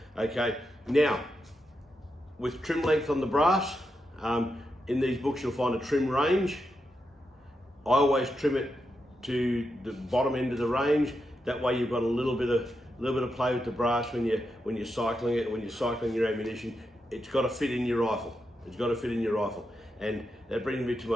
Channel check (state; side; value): normal; both; correlation 0.86